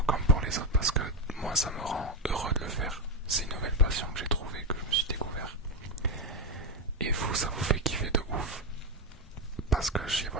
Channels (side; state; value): both; normal; correlation 0.09